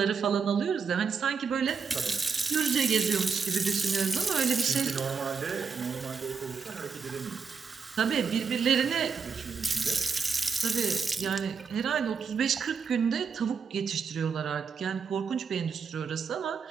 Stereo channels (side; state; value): left; quieter; 5.7 dB